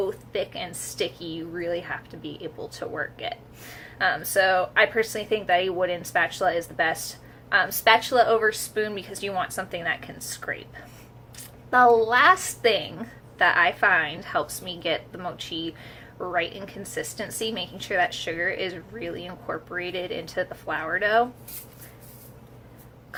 thick and sticky. You really have to be able to work it. So I personally think that a wooden spatula is the best. Spatula over spoon because you want something that can scrape. The last thing that I find helps me get the mochi right in consistency, making sure that sugar is really incorporated into the flour dough.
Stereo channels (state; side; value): identical; both; correlation 1.00